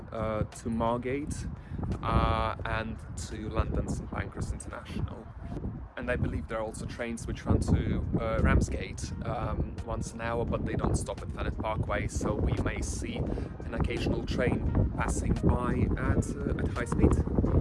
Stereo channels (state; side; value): identical; both; correlation 1.00